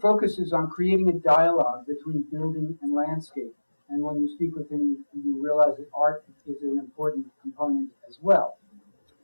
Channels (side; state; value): both; inverted; correlation -1.00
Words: focuses on creating a dialogue between building and landscape. And when you speak with him, you realize that art is an important component as well.